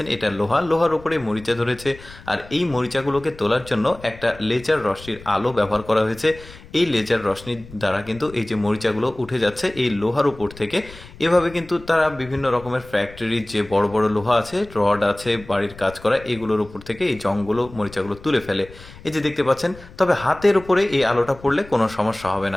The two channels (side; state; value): left; noise; rumble, 19 dB below the sound